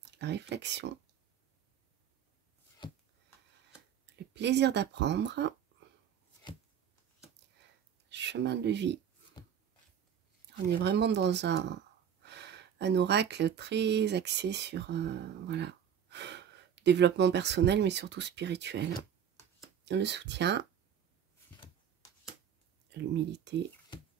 la réflexion, le plaisir d'apprendre, chemin de vie. On est vraiment dans un oracle très axé sur voilà, développement personnel, mais surtout spirituel. Le soutien, l'humilité,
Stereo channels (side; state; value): left; quieter; 8.7 dB